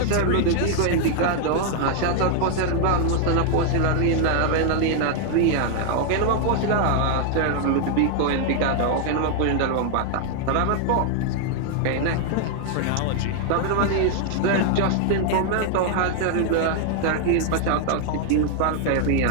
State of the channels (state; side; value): different; both; correlation 0.00